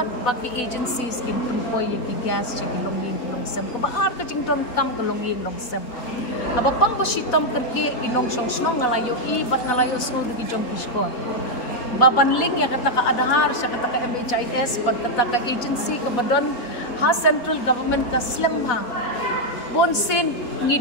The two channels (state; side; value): late; right; 4.1 ms